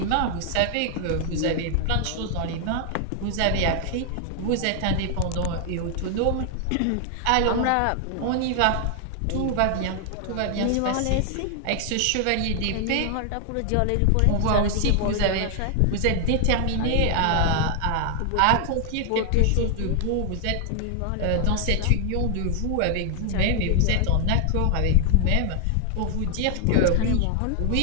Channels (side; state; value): both; different; correlation 0.00